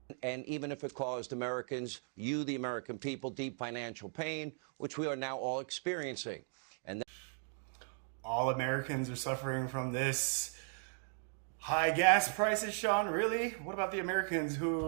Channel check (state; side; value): silent; left; 53 dB below the other